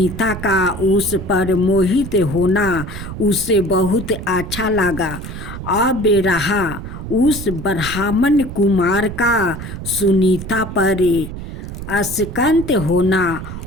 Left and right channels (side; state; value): right; noise; rumble, 9 dB below the sound